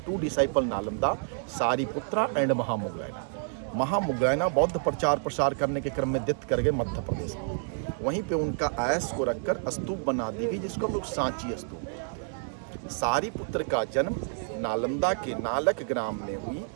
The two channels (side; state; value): left; silent; 59 dB below the other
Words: 2 डिसाइपल नालंदा, सारिपुत्रा एंड महामुगलैना। महामुगलैना बौद्ध प्रचार प्रसार करने के क्रम में डेथ कर गए मध्य प्रदेश में। वहीं पे उनका आयस को रखकर स्तूप बना दी गई, जिसको हम लोग सांची स्तूप कहते हैं। सारीपुत्र का जन्म नालंदा के नालक ग्राम में हुई।